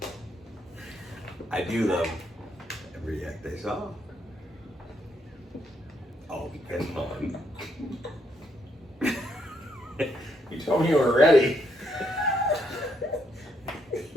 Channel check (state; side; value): normal; both; correlation 0.75